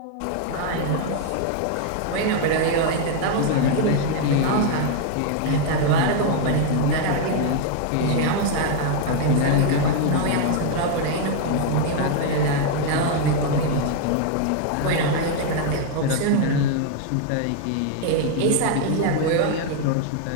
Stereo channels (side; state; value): both; different; correlation 0.00